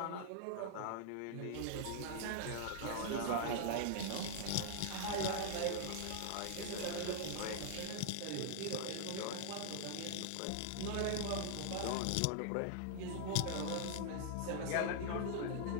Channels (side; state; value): both; different; correlation -0.01